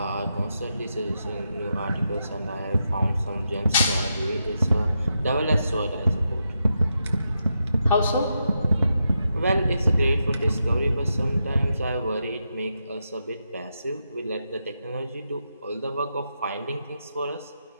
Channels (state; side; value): inverted; both; correlation -0.84